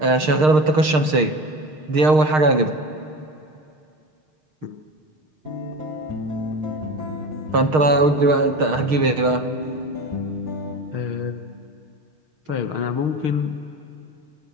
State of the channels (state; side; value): late; left; 6.5 ms